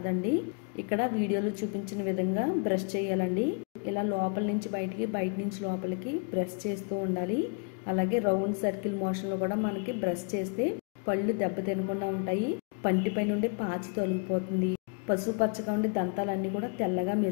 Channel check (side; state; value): right; quieter; 36.7 dB